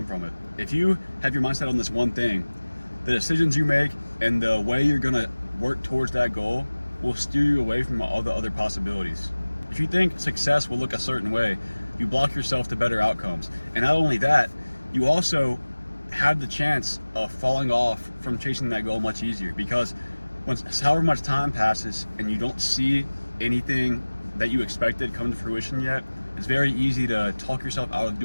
from it. If you have your mindset on this one thing, the decisions you make and the way you're going to work towards that goal will steer you away from all the other possibilities. If you think success will look a certain way, you block yourself to better outcomes. And not only that, you also have the chance of falling off from chasing that goal much easier, because once however much time passes and you don't see anything that you expected come to fruition yet, it's very easy to talk yourself out of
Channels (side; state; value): both; inverted; correlation -1.00